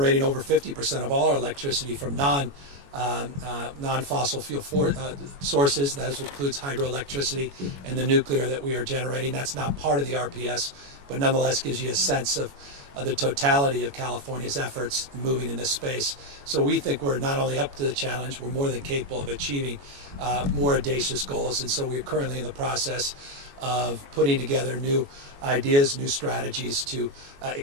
over 50% of all our electricity from non-fossil fuel sources. That includes hydroelectricity and the nuclear that we are generating. That's not part of the RPS, but nonetheless gives you a sense of the totality of California's efforts moving in this space. So we think we're not only up to the challenge, we're more than capable of achieving more audacious goals. And so we're currently in the process of putting together new ideas, new strategies to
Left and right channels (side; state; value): left; late; 21 ms